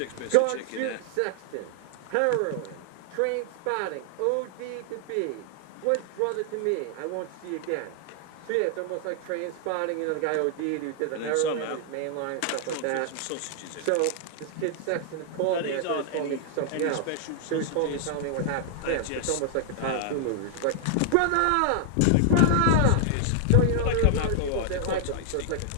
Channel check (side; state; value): both; different; correlation 0.00